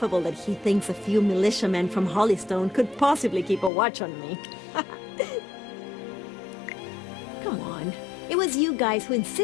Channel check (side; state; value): right; drops out; at 3.7 s